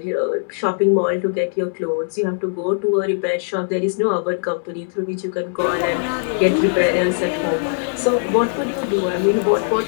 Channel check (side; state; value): right; silent; digital silence